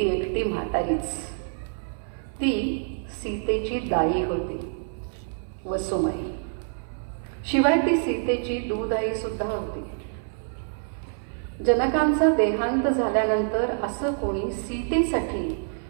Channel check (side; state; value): left; silent; 61 dB below the other